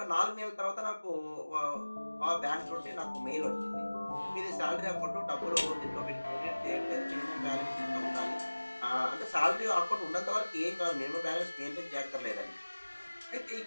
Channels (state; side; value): inverted; both; correlation -1.00